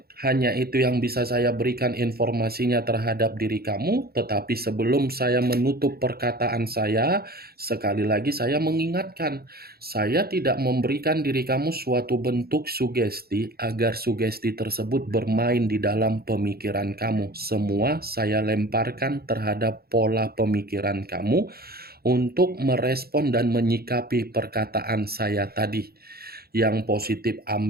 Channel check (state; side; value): late; left; 0.45 ms